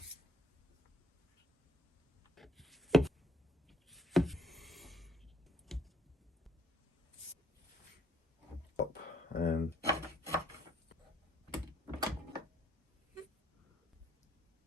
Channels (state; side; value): normal; both; correlation 0.64